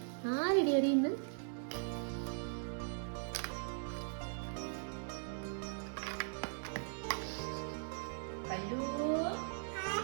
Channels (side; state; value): left; silent; 51 dB below the other